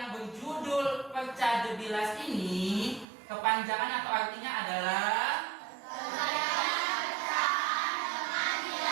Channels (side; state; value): left; drops out; at 3.1 s